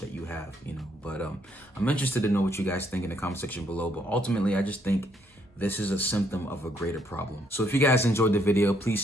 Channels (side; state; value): both; normal; correlation 0.71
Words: you have, But I'm interested to know what you guys think in the comment section below. But ultimately, I just think this is a symptom of a greater problem. So if you guys enjoyed the video, please